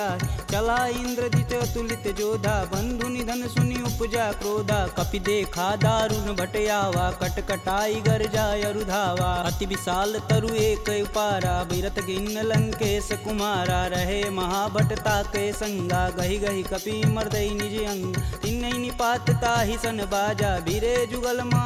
चला इंद्रजित अतुलित जोधा, बंधु निधन सुनि उपजा क्रोधा। कपि देखा दारुण भट आवा, कटकटाई गरजा अरुधावा। अति विशाल तरु एक उपारा, बिरत गिन्न लंकेश कुमारा। रहे महाभट ताके संगा, गहि गहि कपि मर्दई निज अंग। तिन्हि निपात ताहि सन बाजा, बीरे जुगल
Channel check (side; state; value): both; identical; correlation 1.00